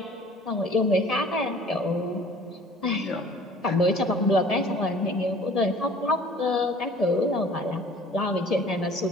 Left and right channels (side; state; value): both; normal; correlation 0.50